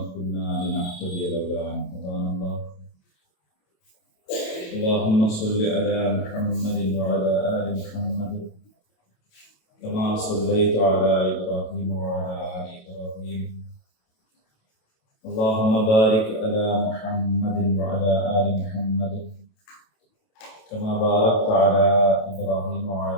كنا لنهتدي لولا أن هدانا الله. اللهم صل على محمد وعلى آل محمد كما صليت على إبراهيم وعلى آل إبراهيم. اللهم بارك على محمد وعلى آل محمد كما باركت على إبراهيم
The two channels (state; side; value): late; right; 28 ms